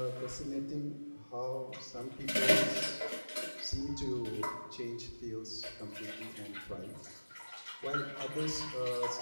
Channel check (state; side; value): inverted; both; correlation -1.00